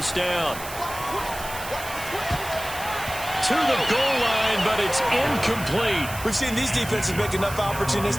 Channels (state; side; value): noise; right; hiss, 12 dB below the sound